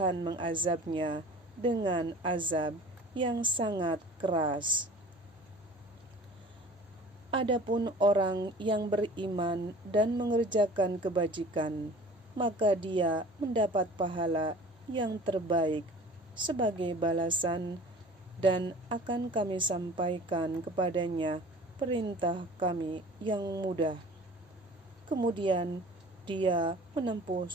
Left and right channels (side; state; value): both; normal; correlation 0.44